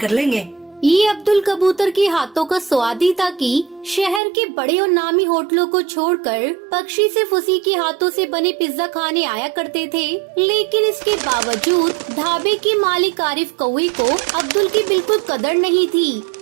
लेंगे। ये अब्दुल कबूतर के हाथों का स्वाद ही था कि शहर के बड़े और नामी होटलों को छोड़कर पक्षी सिर्फ उसी के हाथों से बने पिज्जा खाने आया करते थे। लेकिन इसके बावजूद ढाबे के मालिक आरिफ कौवे को अब्दुल की बिल्कुल कदर नहीं थी।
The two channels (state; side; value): drops out; left; at 4.2 s